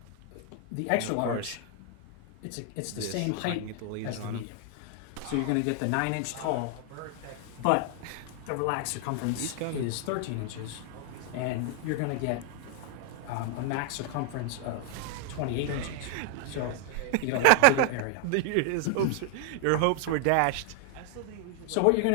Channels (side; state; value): both; different; correlation 0.00